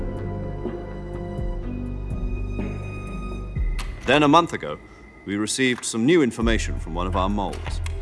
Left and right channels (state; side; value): identical; both; correlation 1.00